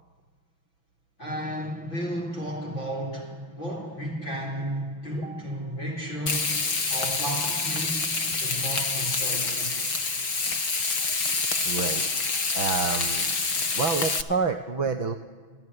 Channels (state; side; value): late; right; 6.1 ms